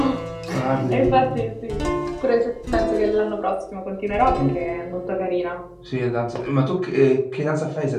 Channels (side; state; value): both; identical; correlation 1.00